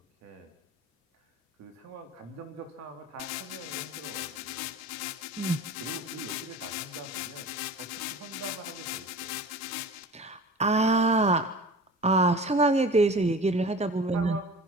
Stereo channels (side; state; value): both; normal; correlation 0.38